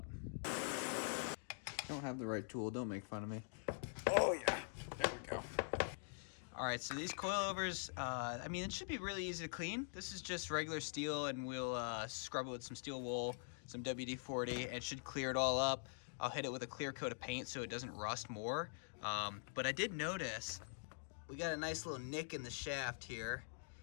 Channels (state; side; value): silent; right; digital silence